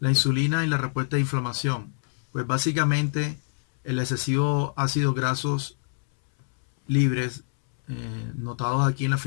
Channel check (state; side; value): silent; right; 61 dB below the other